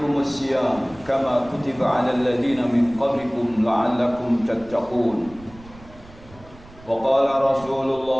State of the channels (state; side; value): noise; right; rumble, 22 dB below the sound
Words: الصيام كما كتب على الذين من قبلكم لعلكم تتقون وقال رسول